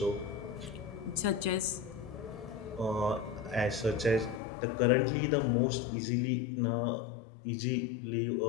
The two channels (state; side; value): drops out; right; at 4.4 s